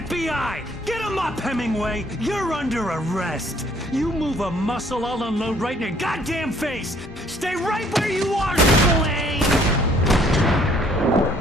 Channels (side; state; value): both; normal; correlation 0.62